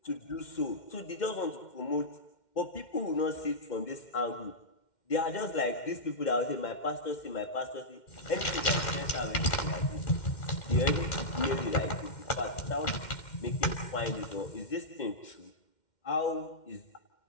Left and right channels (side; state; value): right; late; 2.1 ms